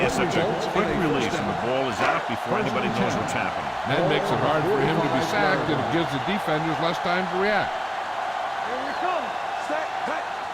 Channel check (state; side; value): identical; both; correlation 1.00